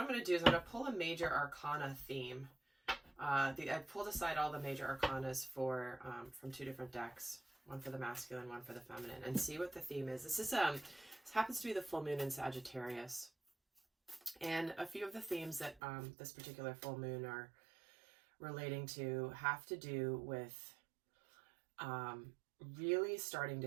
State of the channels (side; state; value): left; drops out; at 15.8 s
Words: going to do is I'm going to pull a major arcana theme. I pulled aside all the major arcanas from two different decks. One for the masculine, one for the feminine, and see what the theme is. This happens to be the full moon in Sagittarius. And a few of the themes that this particular full moon are relating to have to do with really starting to